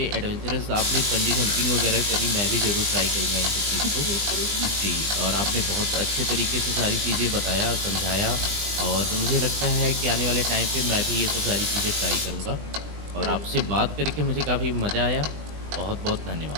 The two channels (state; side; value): late; left; 20 ms